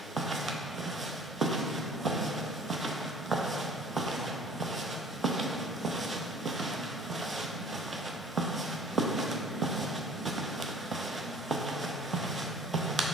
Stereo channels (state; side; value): normal; both; correlation 0.50